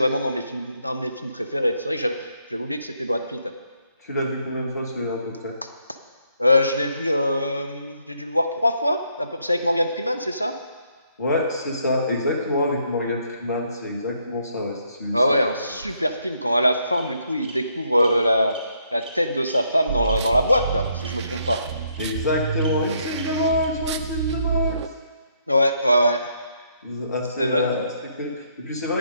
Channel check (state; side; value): inverted; both; correlation -0.72